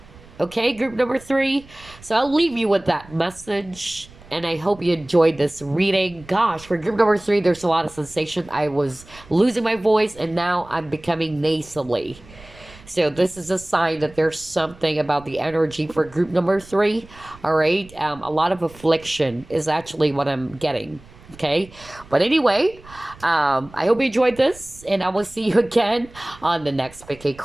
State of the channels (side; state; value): right; noise; rumble, 22 dB below the sound